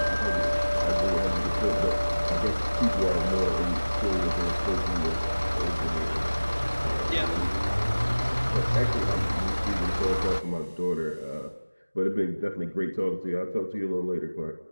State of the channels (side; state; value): both; inverted; correlation -1.00